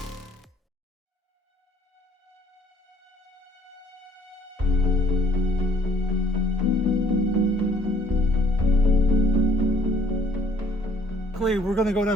We're gonna go to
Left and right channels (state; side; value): normal; both; correlation 0.60